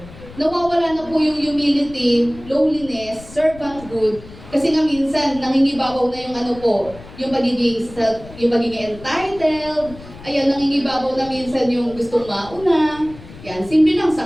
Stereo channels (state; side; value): noise; left; rumble, 18 dB below the sound